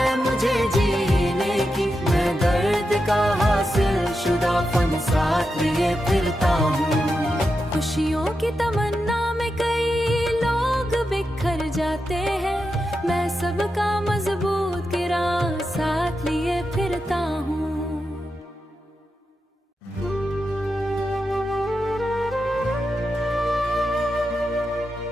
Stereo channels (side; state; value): both; normal; correlation 0.88